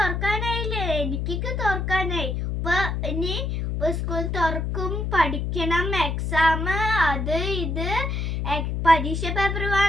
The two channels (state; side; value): noise; left; hum, 1 dB below the sound